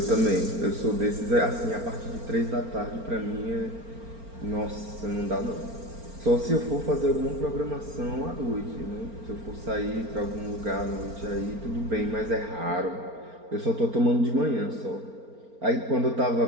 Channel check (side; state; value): left; late; 4.4 ms